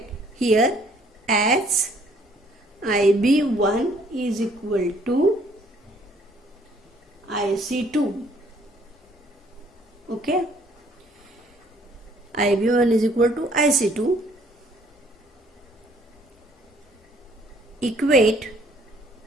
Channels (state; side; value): normal; both; correlation 0.61